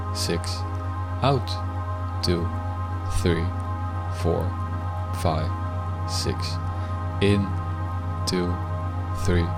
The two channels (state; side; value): identical; both; correlation 1.00